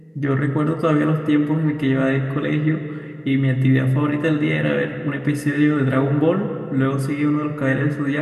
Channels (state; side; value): identical; both; correlation 1.00